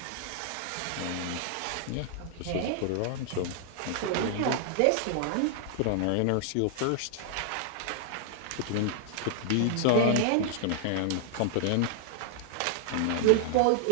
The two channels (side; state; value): both; different; correlation -0.01